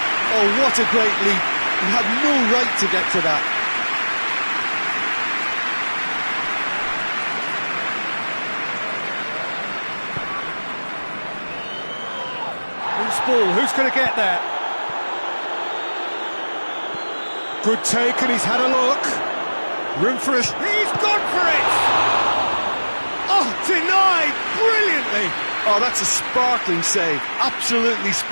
Oh, what a great leap. He had no right to get to that. Loose ball, who's going to get there? Good take, and he's had a look. Room for it. He's gone for it! Oh, denied brilliantly. Oh, that's a sparkling save. Absolutely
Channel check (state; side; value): inverted; both; correlation -1.00